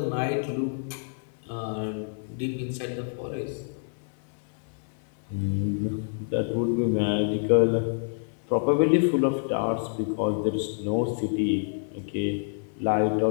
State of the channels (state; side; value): silent; right; 60 dB below the other